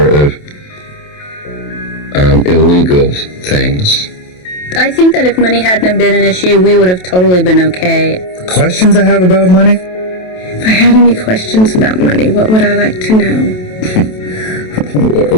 of illegal things. I think that if money hadn't been an issue, we would have totally been okay. Questions I have about money? If I had any questions about money, what would I like to know?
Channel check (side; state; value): right; late; 27 ms